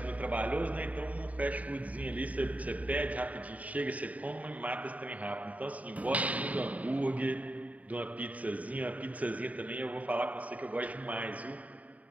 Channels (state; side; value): late; left; 0.070 ms